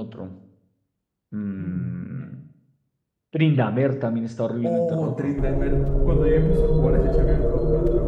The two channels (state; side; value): identical; both; correlation 1.00